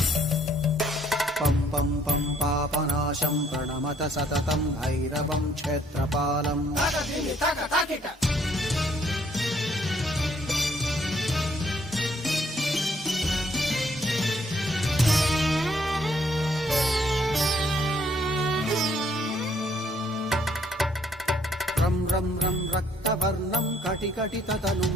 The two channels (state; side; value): normal; both; correlation 0.66